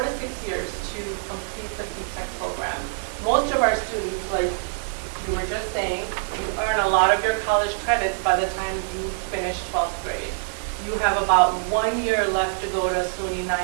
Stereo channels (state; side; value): silent; left; digital silence